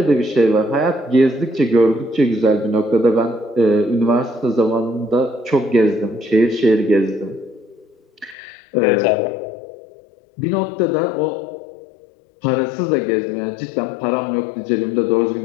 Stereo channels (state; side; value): drops out; right; at 8.3 s